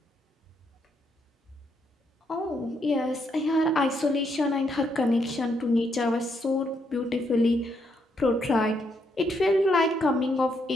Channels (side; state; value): both; normal; correlation 0.76